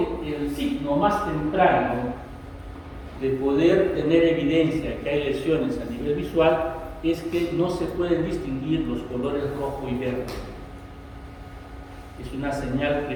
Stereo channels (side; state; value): both; identical; correlation 1.00